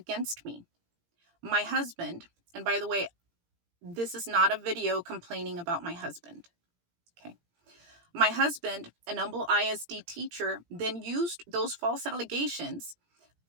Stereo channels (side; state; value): left; late; 17 ms